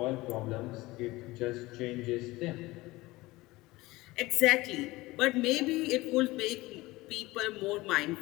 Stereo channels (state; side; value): quieter; right; 20.0 dB